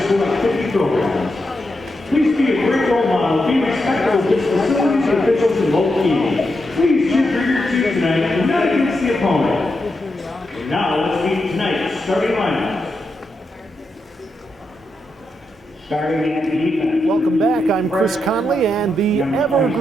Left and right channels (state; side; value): normal; both; correlation 0.85